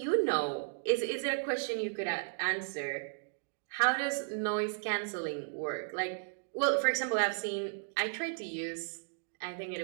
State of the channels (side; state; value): left; silent; digital silence